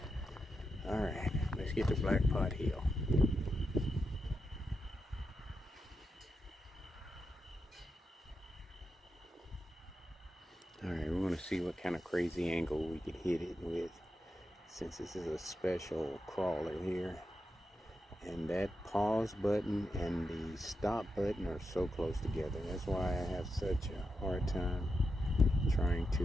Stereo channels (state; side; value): normal; both; correlation 0.87